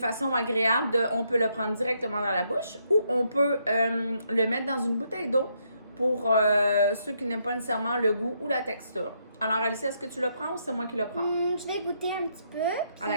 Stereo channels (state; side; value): inverted; both; correlation -0.75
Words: agréable on peut le prendre directement dans la bouche ou on peut le mettre dans une bouteille d'eau pour ceux qui n'aiment pas nécessairement le goût ou la texture. Alors, Alicia, est-ce que tu le prends ou c'est moi qui le prends? Je vais goûter un petit peu. À